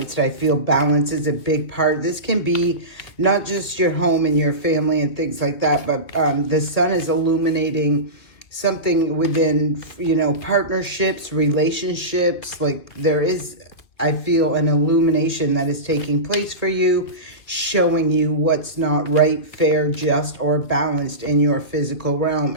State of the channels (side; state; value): right; late; 2.3 ms